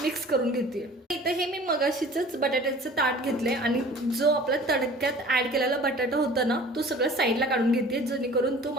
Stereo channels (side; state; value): both; normal; correlation 0.45